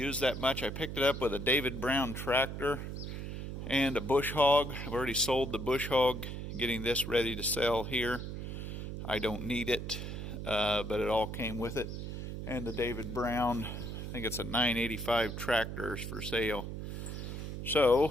that much. I picked it up with a David Brown tractor and a bush hog. I've already sold the bush hog, getting this ready to sell here. I don't need it, but it all came with it. And the David Brown, I think it's a 985 tractor, is for sale.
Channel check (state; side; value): noise; right; hum, 6 dB below the sound